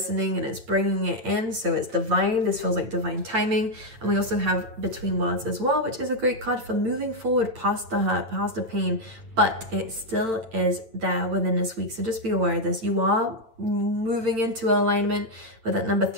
and it's bringing it in, so it's divine. This feels like divine timing. And we also have Between Worlds as well, which is a great card for moving forward past the hurt, past the pain, but it still is there within this week. So just be aware of this. You are moving into alignment with that number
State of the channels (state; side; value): late; left; 9.1 ms